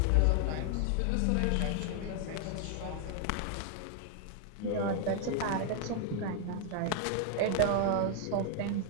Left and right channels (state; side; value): different; both; correlation 0.00